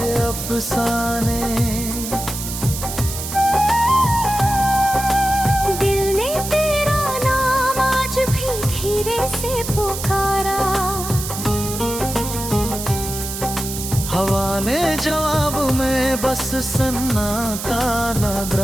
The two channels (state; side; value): noise; right; hiss, 7 dB below the sound